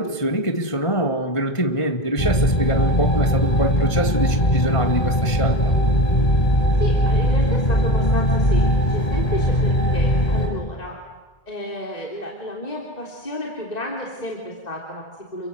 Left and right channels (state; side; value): late; right; 1.5 ms